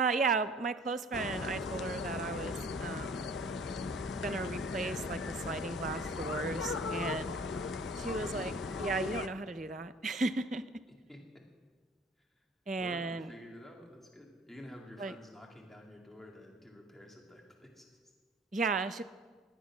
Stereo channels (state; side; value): normal; both; correlation 0.49